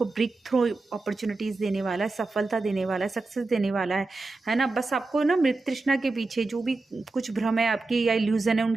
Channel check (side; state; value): left; quieter; 3.4 dB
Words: ब्रेक थ्रू अपॉर्चुनिटीज़ देने वाला है, सफलता देने वाला है, सक्सेस देने वाला है ना। बस आपको ना मृत तृष्णा के पीछे जो भी कुछ भ्रम है आपकी या इल्यूज़न है,